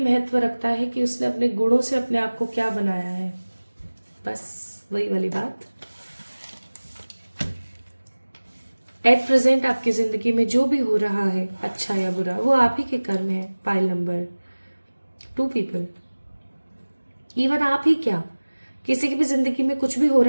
महत्व रखता है कि उसने अपने गुणों से अपने आप को क्या बनाया है। बस वही वाली बात। एट प्रेजेंट आपकी जिंदगी में जो भी हो रहा है अच्छा या बुरा, वो आप ही के कर्म है। पाइल नंबर 2 पीपल, इवन आप ही क्या, किसी की भी जिंदगी में कुछ भी हो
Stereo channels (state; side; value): inverted; both; correlation -1.00